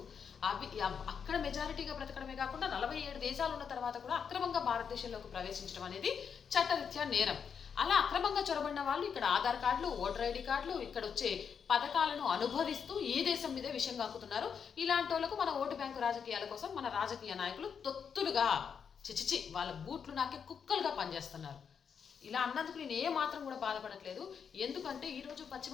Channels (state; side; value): quieter; right; 6.9 dB